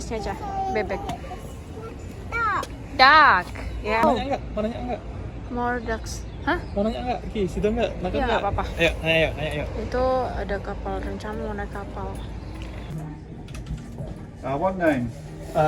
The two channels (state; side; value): identical; both; correlation 1.00